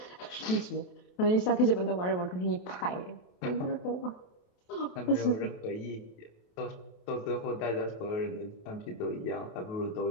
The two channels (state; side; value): late; right; 28 ms